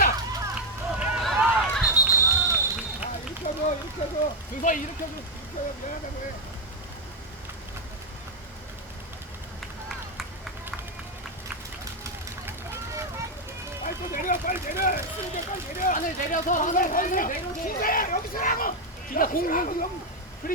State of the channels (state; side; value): normal; both; correlation 0.04